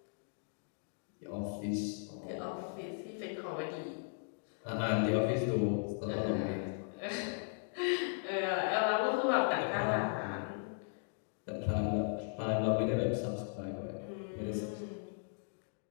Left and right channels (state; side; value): silent; right; digital silence